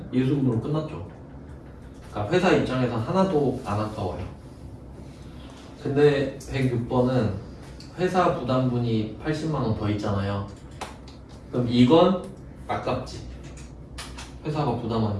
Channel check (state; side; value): identical; both; correlation 1.00